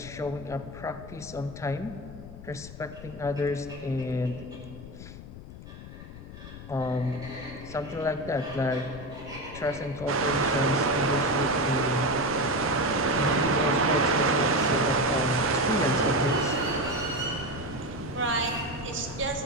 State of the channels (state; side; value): noise; left; rumble, 13 dB below the sound